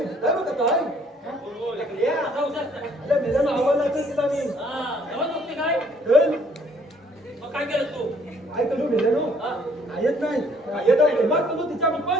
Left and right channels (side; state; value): both; normal; correlation 0.62